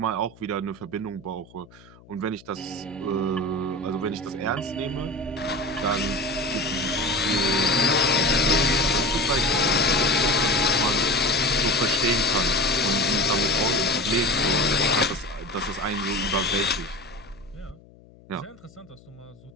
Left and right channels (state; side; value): noise; left; hum, 25 dB below the sound